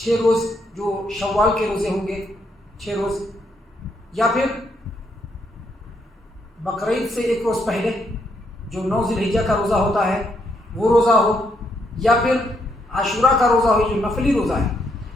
روز جو شوال کے روزے ہوں گے 6 روز، یا پھر بقرعید سے 1 روز پہلے جو 9 ذی الحجہ کا روزہ ہوتا ہے وہ روزہ ہو، یا پھر عاشوراء کا روزہ ہو جو نفلی روزہ ہے،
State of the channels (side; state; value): both; normal; correlation 0.75